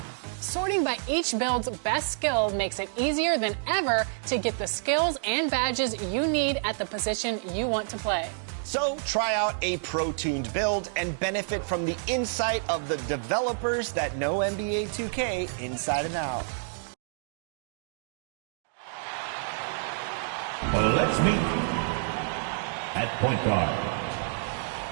Sorting by each build's best skill makes it easier than ever to get the skills and badges you need at the position you want to play. So try out a pro-tuned build and benefit from the insight of the developers that know NBA 2K inside and out. Let's meet at point guard.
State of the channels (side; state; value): left; silent; digital silence